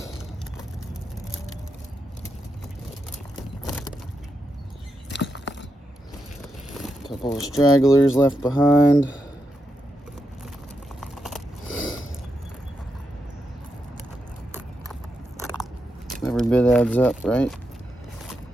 Couple of stragglers left behind. Every bit adds up, right?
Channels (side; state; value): both; normal; correlation 0.84